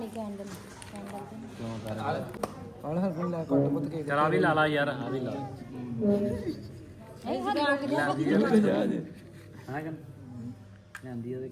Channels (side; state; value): both; identical; correlation 1.00